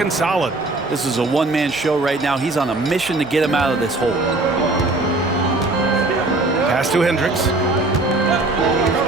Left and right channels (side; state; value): left; quieter; 3.0 dB